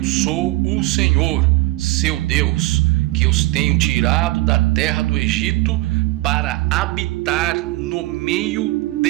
sou o Senhor, seu Deus, que os tenho tirado da terra do Egito para habitar no meio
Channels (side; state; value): left; quieter; 19.5 dB